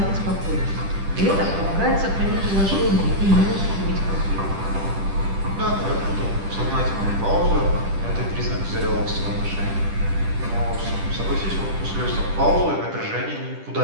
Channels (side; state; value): left; late; 10 ms